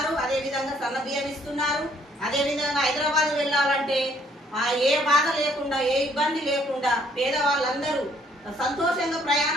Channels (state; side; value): normal; both; correlation 0.65